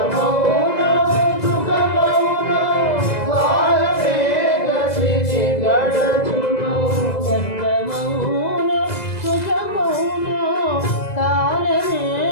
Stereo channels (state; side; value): late; right; 2.0 ms